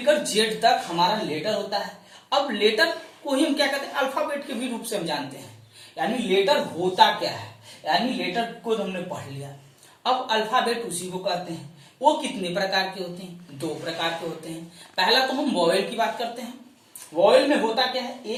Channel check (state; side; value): identical; both; correlation 1.00